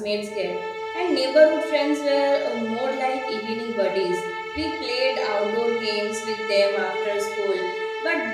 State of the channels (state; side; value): identical; both; correlation 1.00